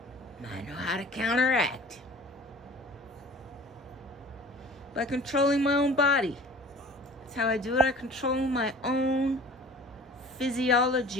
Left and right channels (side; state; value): both; normal; correlation 0.45